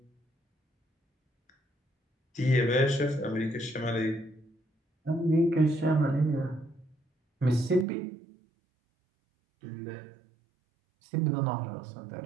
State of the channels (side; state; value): left; drops out; at 7.9 s